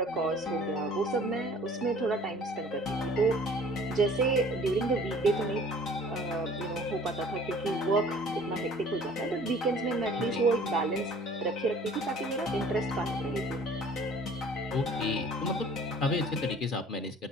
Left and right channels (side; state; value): both; normal; correlation 0.50